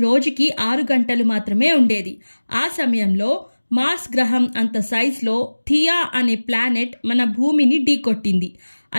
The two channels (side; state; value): both; inverted; correlation -1.00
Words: రోజుకి 6 గంటలు మాత్రమే ఉండేది. ఆ సమయంలో మార్స్ గ్రహం అంత సైజులో థియా అనే ప్లానెట్ మన భూమిని ఢీకొట్టింది.